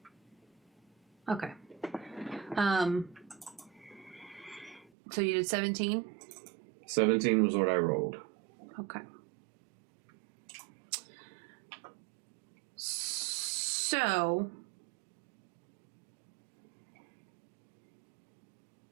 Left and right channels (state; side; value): drops out; left; at 4.9 s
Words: Okay. So you did 17? 17 was what I rolled. Okay. So,